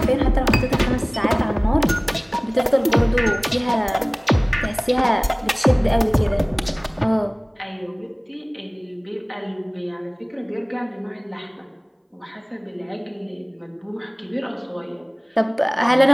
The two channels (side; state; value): both; identical; correlation 1.00